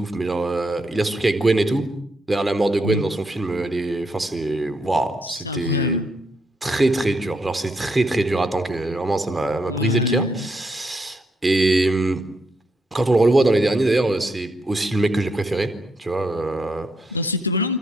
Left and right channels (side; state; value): both; normal; correlation 0.78